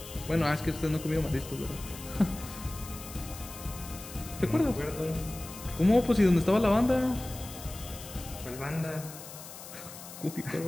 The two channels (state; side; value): noise; left; hiss, 14 dB below the sound